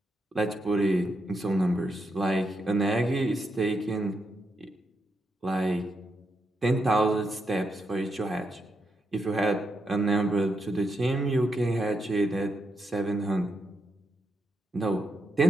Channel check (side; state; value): both; normal; correlation 0.83